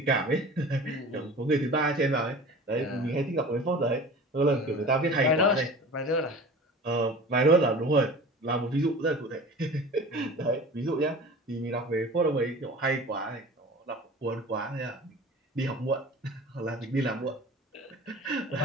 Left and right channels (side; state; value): both; normal; correlation 0.39